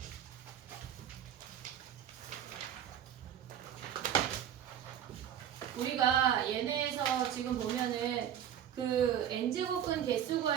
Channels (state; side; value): quieter; left; 9.9 dB